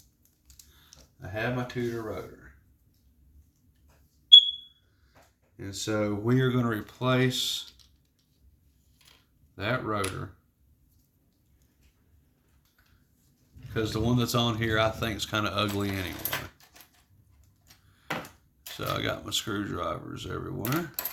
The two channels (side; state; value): both; identical; correlation 1.00